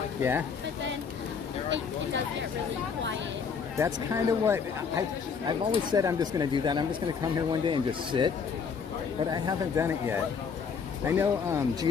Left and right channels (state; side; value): quieter; right; 6.1 dB